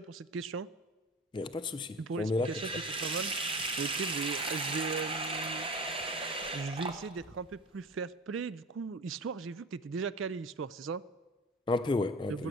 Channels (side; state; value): both; normal; correlation 0.35